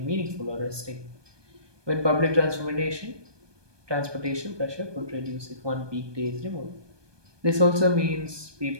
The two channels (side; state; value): left; late; 1.2 ms